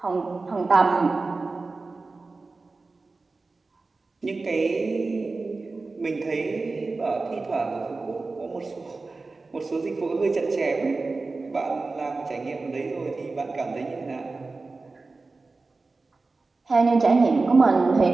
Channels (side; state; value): left; quieter; 3.7 dB